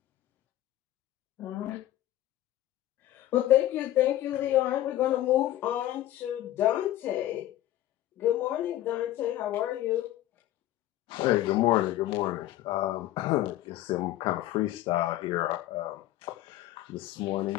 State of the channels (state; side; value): quieter; right; 14.1 dB